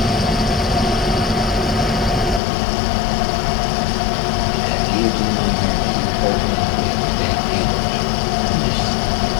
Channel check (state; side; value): drops out; right; at 2.4 s